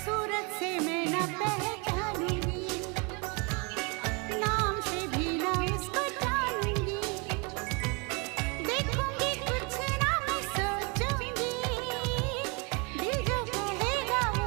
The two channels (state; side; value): quieter; left; 31.7 dB